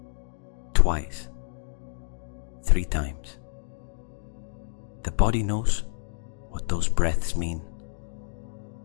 Twice. 3 times. The body knows what those breaths mean,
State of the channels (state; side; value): silent; right; 59 dB below the other